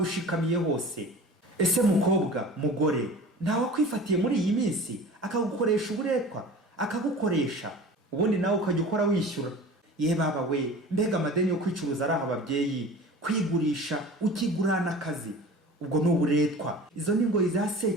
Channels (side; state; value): both; normal; correlation 0.39